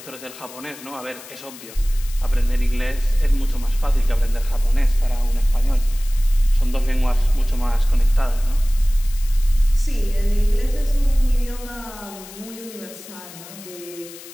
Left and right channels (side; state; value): left; noise; hiss, 17 dB below the sound